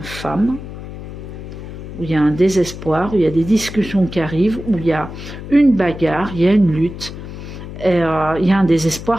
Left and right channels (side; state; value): left; noise; hum, 11 dB below the sound